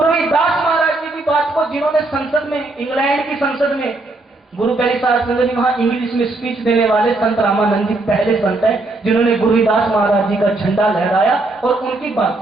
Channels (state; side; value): quieter; left; 3.0 dB